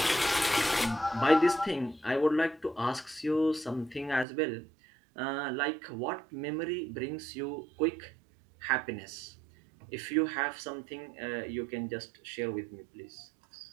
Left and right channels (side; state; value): left; drops out; at 4.2 s